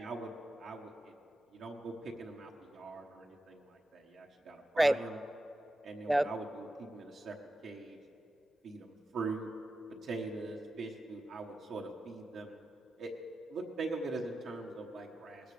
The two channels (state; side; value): normal; both; correlation 0.90